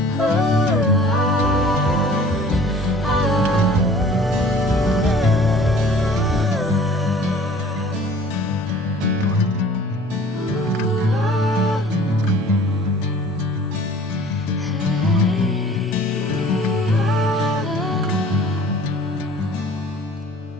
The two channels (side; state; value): both; normal; correlation 0.49